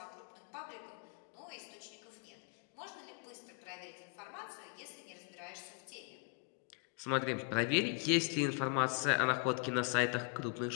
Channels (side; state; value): right; quieter; 39.7 dB